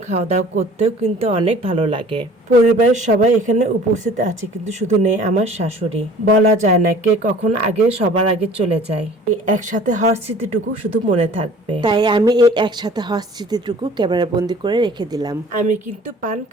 খাওয়া দাওয়া করতেও কিন্তু অনেক ভালো লাগে। পরিবারের সবাই এখানে উপস্থিত আছে, কিন্তু শুধু নেই আমার শাশুড়ি। বলা যায় না কে কখন আগে সবার আগে চলে যায়। এই একসাথে হওয়ার স্মৃতিটুকু শুধু মনে থাকবে, তাই আমি এই একসাথে হওয়ার স্মৃতিটুকু ক্যামেরা বন্দি করে রেখে দিলাম। আমি কিন্তু পান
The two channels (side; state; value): both; normal; correlation 0.48